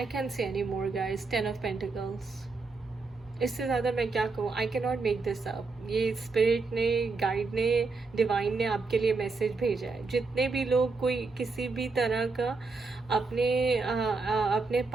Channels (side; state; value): left; quieter; 4.0 dB